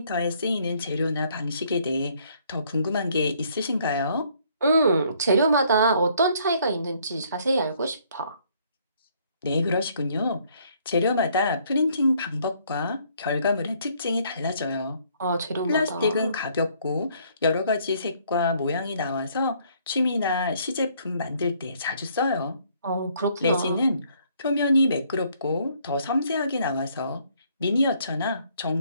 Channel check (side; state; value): both; inverted; correlation -0.65